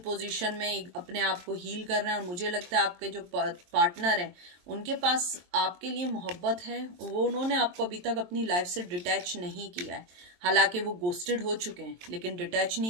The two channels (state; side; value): late; left; 22 ms